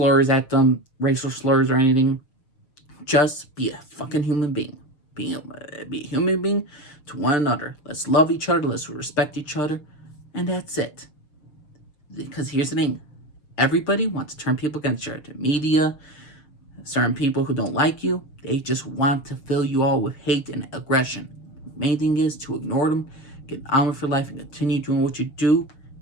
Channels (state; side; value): late; right; 6.7 ms